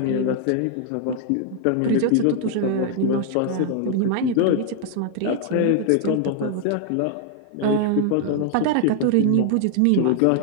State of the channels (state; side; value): different; both; correlation 0.00